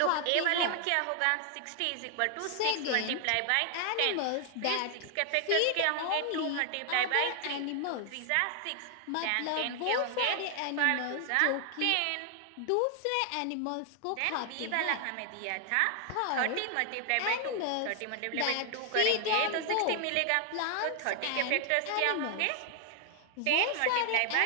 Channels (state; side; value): different; both; correlation 0.00